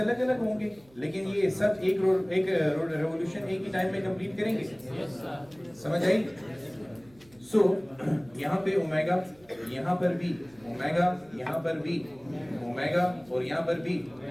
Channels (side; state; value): right; noise; hum, 28 dB below the sound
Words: अलग होंगे, लेकिन ये सब एक रेवोल्यूशन एक ही टाइम में कंप्लीट करेंगे। समझ आई? सो यहाँ पे ओमेगा, यहाँ पर भी ओमेगा, यहाँ पर भी ओमेगा, और यहाँ पर भी